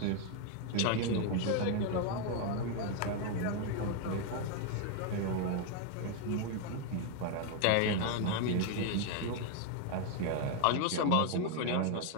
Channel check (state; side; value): different; both; correlation 0.01